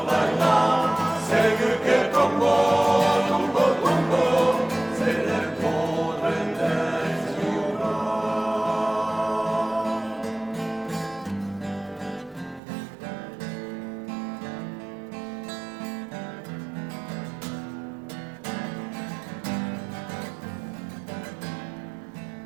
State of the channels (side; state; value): left; drops out; at 12.6 s